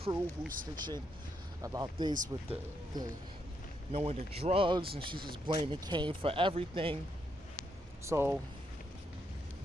who's snitching about this with the knowing the drugs, and she's just blaming Kane for everything. So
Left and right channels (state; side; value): normal; both; correlation 0.78